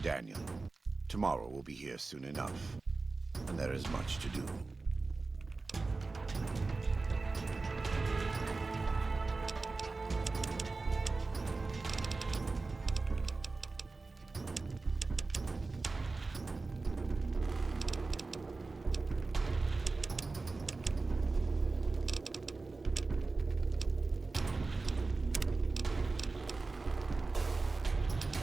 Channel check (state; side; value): quieter; left; 3.7 dB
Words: Daniel. Tomorrow we'll be here soon enough, and there is much to do.